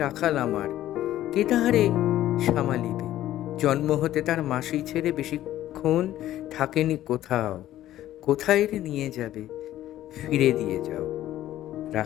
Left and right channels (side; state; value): right; quieter; 13.4 dB